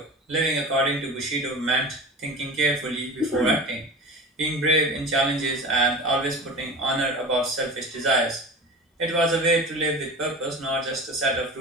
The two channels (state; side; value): normal; both; correlation 0.33